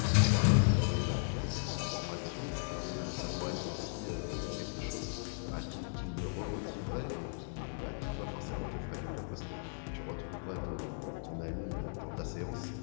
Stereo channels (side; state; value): right; silent; digital silence